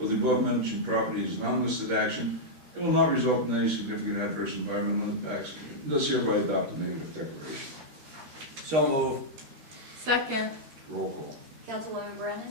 of the above mentioned property is non-listed action. It will not result in any significant adverse environmental impacts, and thus hereby adopt a negative declaration. So move. Second. Roll call. Councilwoman Brennan?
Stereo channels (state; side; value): late; left; 13 ms